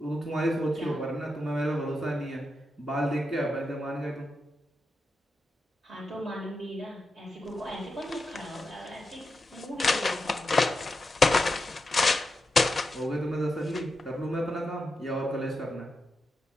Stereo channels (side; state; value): both; normal; correlation 0.88